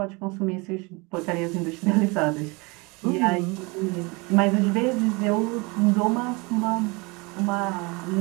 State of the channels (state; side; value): quieter; left; 27.3 dB